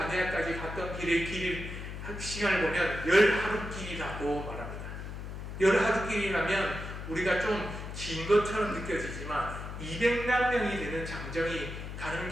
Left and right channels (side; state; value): left; noise; hum, 8 dB below the sound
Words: 갔던 길의 시간을 보면 10하루길이라고 말합니다. 10하루길이라면 우리가 좀 긴 것처럼 느껴지지만 200만 명이 되는 장정이 가는